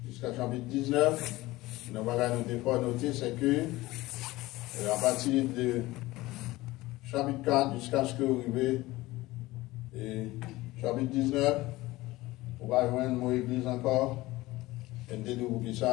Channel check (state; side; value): quieter; right; 18.9 dB